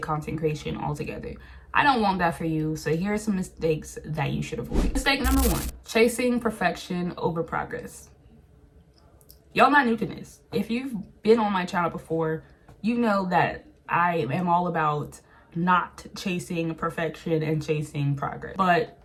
content creation altogether. I don't want that for you, so here are some mistakes that you should avoid. Mistake number 1, chasing perfection over progress. Y'all not new to this. If you've been on my channel before, you know that I am all about not chasing perfection and chasing progress. But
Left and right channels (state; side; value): identical; both; correlation 1.00